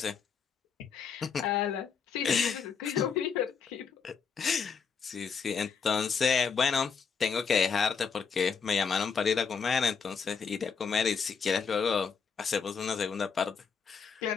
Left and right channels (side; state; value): right; quieter; 6.0 dB